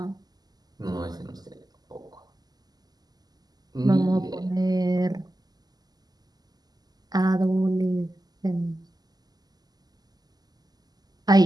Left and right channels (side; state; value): left; late; 0.19 ms